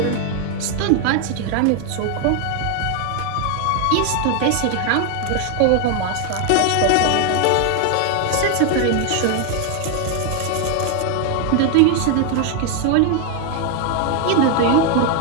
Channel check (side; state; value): both; different; correlation 0.01